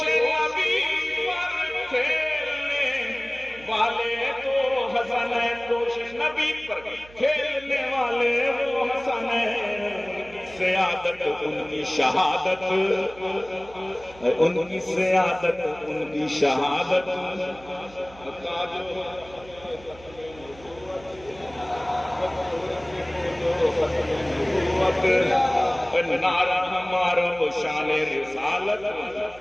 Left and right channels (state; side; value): noise; right; hum, 22 dB below the sound